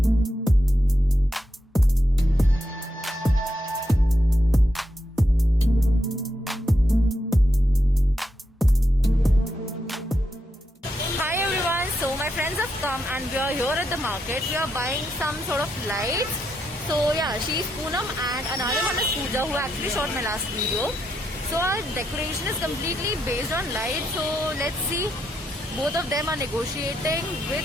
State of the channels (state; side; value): normal; both; correlation 0.82